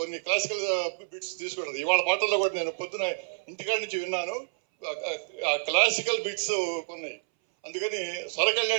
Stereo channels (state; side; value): silent; left; 59 dB below the other